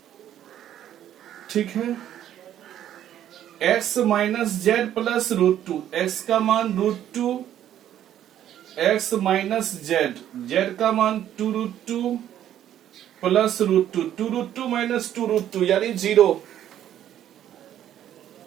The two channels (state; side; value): quieter; left; 11.1 dB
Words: ठीक है। x minus Z plus root two, x का मान root two, x minus z, z का मान 2 root two plus root two, 2 root two minus 2 root two यानी 0,